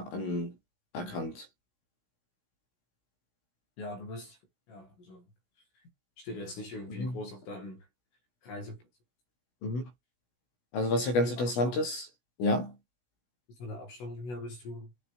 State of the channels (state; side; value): late; right; 16 ms